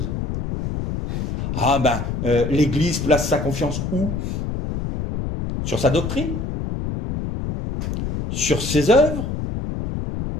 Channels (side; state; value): left; noise; rumble, 4 dB below the sound